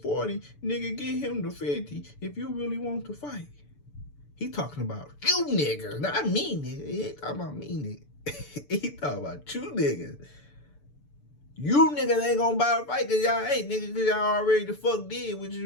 40? Nigga, get him to 50 if you really want to fight. He talking about you niggas, not me nigga. He ain't talking about me nigga. He talking about you niggas. You niggas ain't gonna buy a fight because y'all ain't, nigga, because y'all already the fuck did, which is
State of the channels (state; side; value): late; right; 6.9 ms